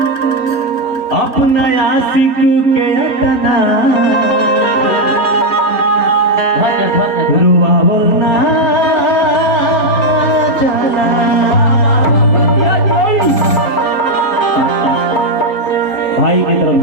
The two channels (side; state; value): right; late; 3.8 ms